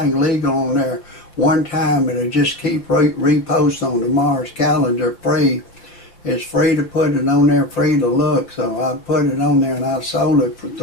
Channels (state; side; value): late; right; 5.7 ms